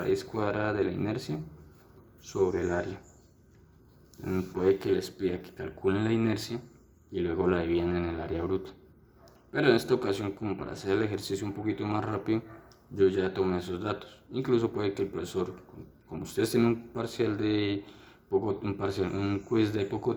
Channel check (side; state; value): both; identical; correlation 1.00